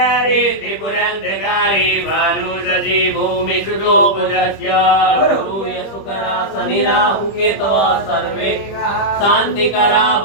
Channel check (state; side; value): late; right; 25 ms